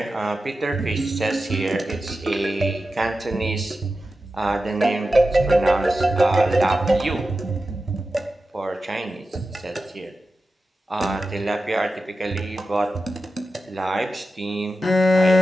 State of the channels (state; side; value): normal; both; correlation 0.92